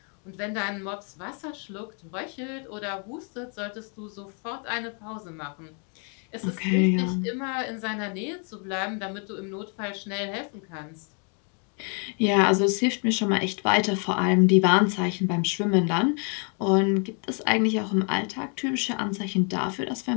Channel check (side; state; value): right; quieter; 39.7 dB